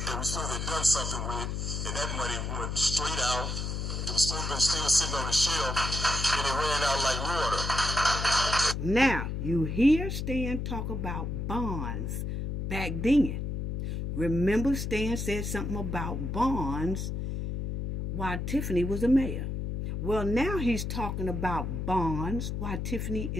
we supposed to have done something with, and that money went straight out. It was supposed to have been still sitting on the shelf, and it ran out like water. Now, you hear Stan talk about bonds back then. Remember Stan said something about bonds while Tiffany was a mayor. Well, now he's talking about bonds while Tiffany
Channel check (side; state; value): left; noise; hum, 3 dB below the sound